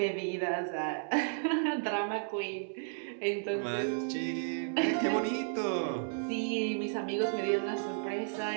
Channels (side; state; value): left; silent; digital silence